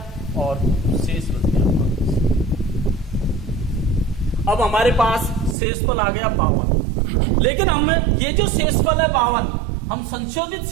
और शेष बच गया 5। अब हमारे पास शेषफल आ गया 52। लेकिन हम ये जो शेषफल है 52, हम संशोधित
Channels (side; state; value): left; drops out; at 5.6 s